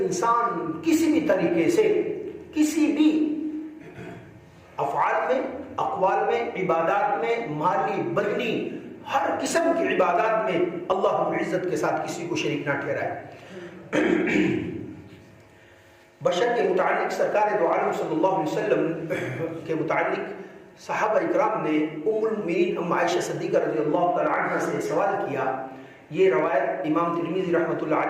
انسان کسی بھی طریقے سے کسی بھی افعال میں، اقوال میں، عبادات میں، مالی بدنی ہر قسم کی عبادات میں اللہ رب العزت کے ساتھ کسی کو شریک نہ ٹھہرائے. بشر کے متعلق سرکار دو عالم صلی اللہ علیہ وسلم کے متعلق صحابہ اکرام نے ام المؤمنین ام عائشہ صدیقہ رضی اللہ تعالی عنہ سے سوال کیا. یہ روایت امام ترمذی رحمۃ اللہ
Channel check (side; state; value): both; identical; correlation 1.00